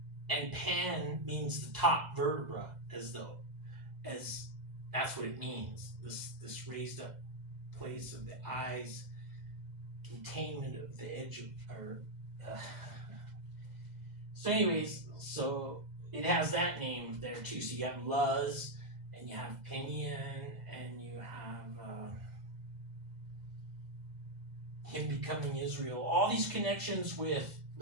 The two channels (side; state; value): left; late; 2.0 ms